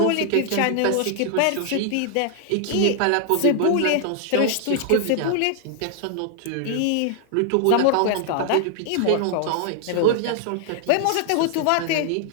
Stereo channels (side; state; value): both; different; correlation 0.00